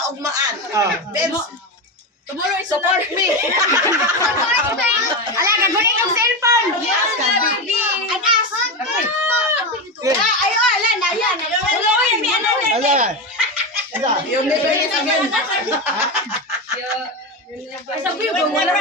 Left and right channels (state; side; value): normal; both; correlation 0.16